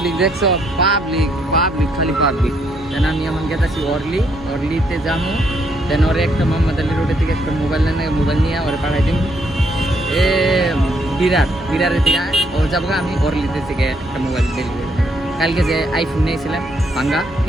দেখছো, পাবলিক পাবলিক খালি পাবলিক। দেন আমি এখন গেতেছি অরলিতে যাবো, দেন ওরে একটা মোহাম্মদ আলী রোডের থেকে একটা মোবাইল নিয়ে ওরে পাঠাই দিন এ বিরারের থেকে ও যাবো, আমি অরলিতে থেকে একটা মোবাইল ডেলিভারি। কালকে যে আইফোন নিয়েছিলাম ভাঙ্গা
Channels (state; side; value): normal; both; correlation 0.72